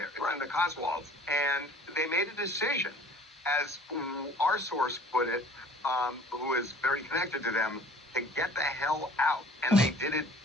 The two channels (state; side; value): normal; both; correlation 0.49